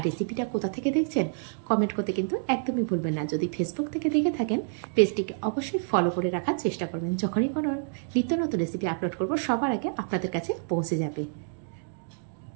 রেসিপিটা কোথা থেকে দেখছেন কমেন্ট করতে কিন্তু একদমই ভুলবেন না। যদি ফেসবুক থেকে দেখে থাকেন পেজটিকে অবশ্যই ফলো করে রাখার চেষ্টা করবেন। যখনই কোনো নিত্য নতুন রেসিপি আপলোড করব সবার আগে আপনাদের কাছে পৌঁছে যাবে।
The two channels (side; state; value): left; silent; digital silence